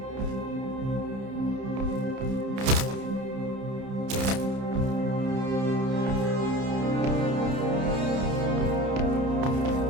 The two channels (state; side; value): late; left; 30 ms